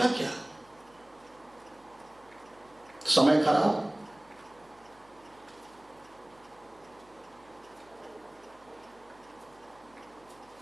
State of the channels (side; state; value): right; noise; hum, 28 dB below the sound